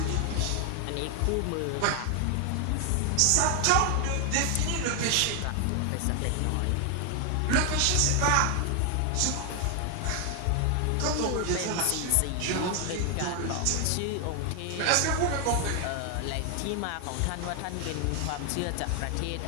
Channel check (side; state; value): both; different; correlation 0.00